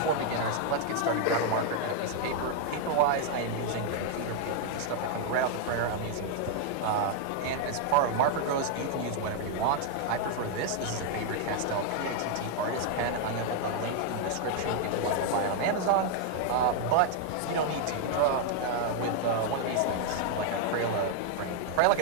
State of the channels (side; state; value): both; different; correlation 0.00